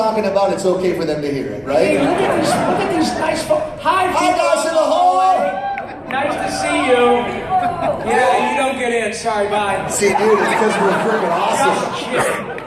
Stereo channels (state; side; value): identical; both; correlation 1.00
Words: about, it's okay for them to hear it, right? Hey, look at these nice folks. Hi, guys in the hallway. Nice to see you. Yeah, you don't get in. Sorry, bye. See, dude, it's because we're freaking